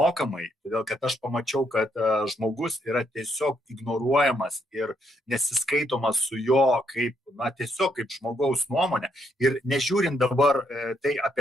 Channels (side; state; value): both; normal; correlation 0.75